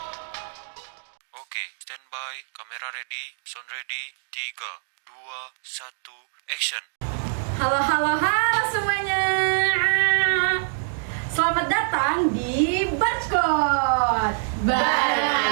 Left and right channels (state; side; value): silent; left; digital silence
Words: Oke, standby, kamera ready, sound ready, 3, 2, 1, action. Halo semuanya. Selamat datang di Barcode Bareng